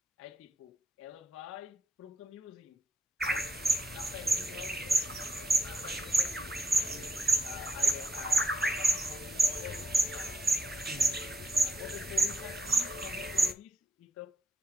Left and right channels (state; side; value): normal; both; correlation 0.77